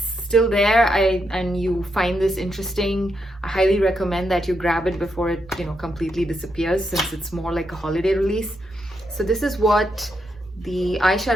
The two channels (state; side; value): normal; both; correlation 0.81